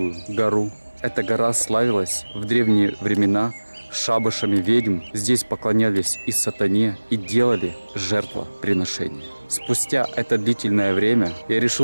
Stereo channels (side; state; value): both; inverted; correlation -1.00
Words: гору. Эта гора славилась в древние времена шабашами ведьм. Здесь поклонялись и сатане, и делали жертвоприношения. Спустя это длительное время я